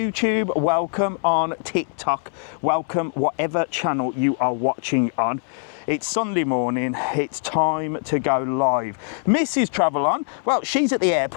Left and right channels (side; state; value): right; silent; digital silence